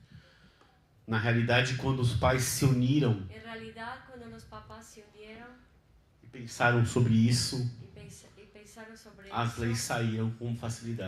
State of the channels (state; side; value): identical; both; correlation 1.00